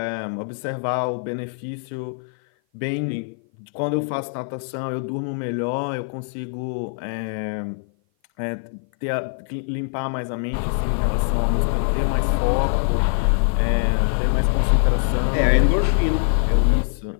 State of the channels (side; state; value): right; silent; 56 dB below the other